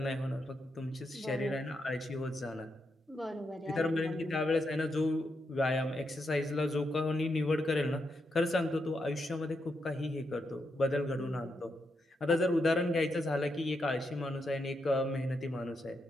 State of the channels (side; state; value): both; normal; correlation 0.83